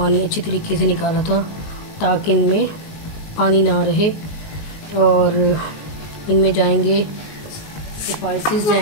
अच्छी तरीके से निकाला था ताकि इनमें पानी ना रहे। और इनमें जाएंगे स्पाइसेस,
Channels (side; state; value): right; late; 19 ms